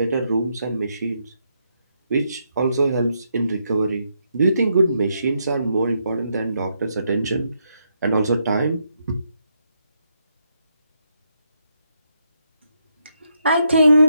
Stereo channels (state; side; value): inverted; both; correlation -0.79